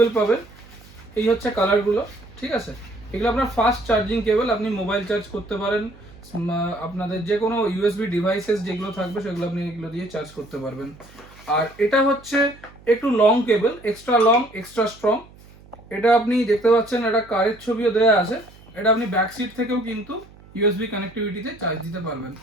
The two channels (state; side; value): noise; right; hum, 23 dB below the sound